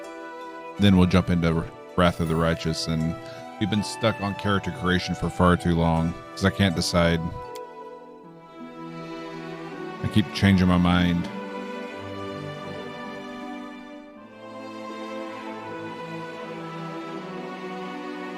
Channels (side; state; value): both; identical; correlation 1.00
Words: then we'll jump into Wrath of the Righteous. And we've been stuck on character creation for far too long because I can't decide. I keep changing my mind.